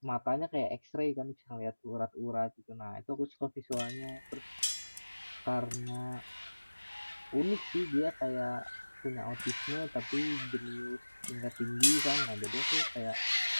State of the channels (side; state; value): both; inverted; correlation -1.00